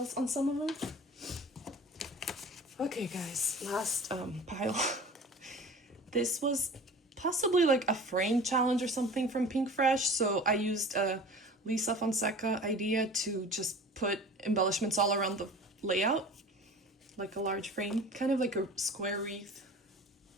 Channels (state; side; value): normal; both; correlation 0.40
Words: on some of them. Okay guys, last pile. This was possibly like a frame challenge or something from Pink Fresh. So I used a Lisa Fonseca idea to just put embellishments all around the layout, like a large frame, kind of like a square wreath.